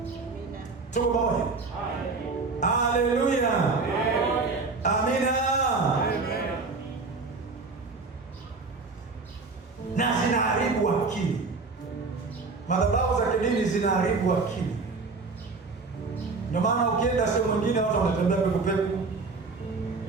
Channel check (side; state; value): left; quieter; 4.1 dB